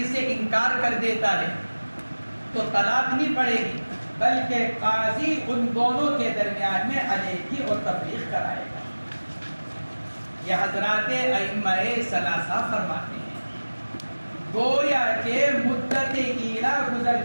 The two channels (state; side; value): inverted; both; correlation -1.00